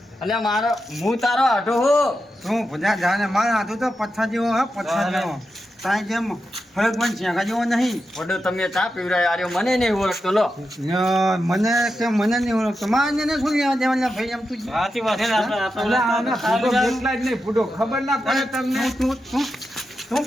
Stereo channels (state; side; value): normal; both; correlation 0.88